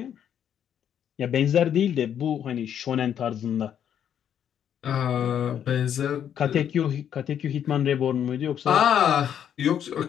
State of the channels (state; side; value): quieter; right; 9.2 dB